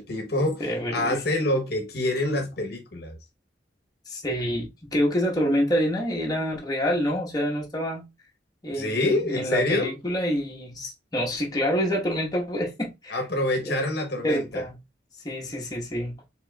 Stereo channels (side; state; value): both; normal; correlation 0.51